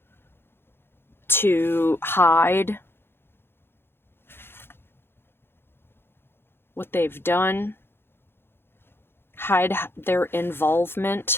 to hide what they've done, hide their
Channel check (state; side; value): late; right; 0.11 ms